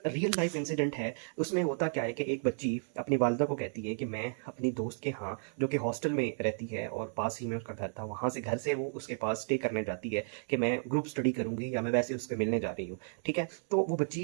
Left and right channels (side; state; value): left; silent; 56 dB below the other